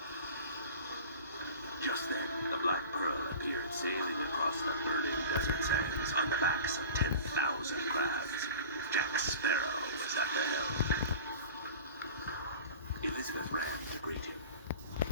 Just then, the Black Pearl appeared sailing across the burning desert sands on the backs of 10,000 crabs. Jack Sparrow was at the helm. Elizabeth ran to greet him.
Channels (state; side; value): inverted; both; correlation -0.37